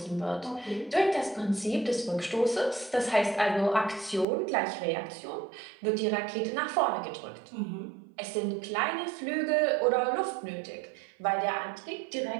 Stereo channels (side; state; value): left; drops out; at 4.2 s